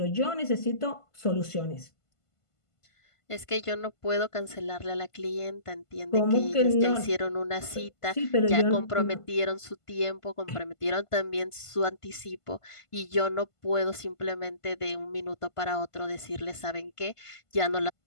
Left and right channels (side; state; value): right; late; 1.5 ms